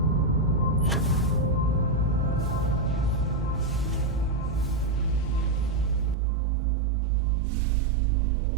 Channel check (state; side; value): drops out; left; at 6.2 s